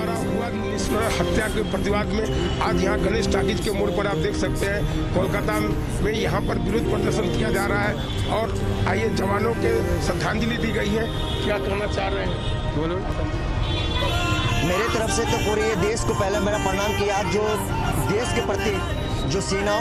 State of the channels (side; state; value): both; identical; correlation 1.00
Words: हुआ निष्ठुर हत्या के प्रतिवाद में आज यहाँ गणेश टाकीज के मोड़ पर आप देख सकते हैं कोलकाता में यहाँ पर विरोध प्रदर्शन किया जा रहा है और आइए जवानों के श्रद्धांजलि दी गई है। क्या कहना चाह रहे हैं? बोलो। मेरे तरफ से तो पूरे ये देश को पहले मेरा प्रणाम किया, जो देश के प्रति जो